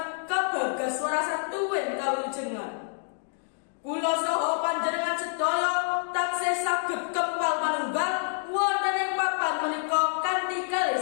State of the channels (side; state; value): right; silent; digital silence